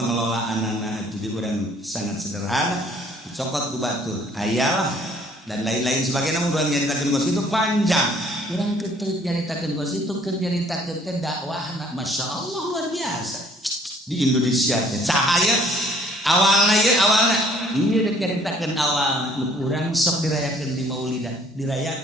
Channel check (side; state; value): both; normal; correlation 0.59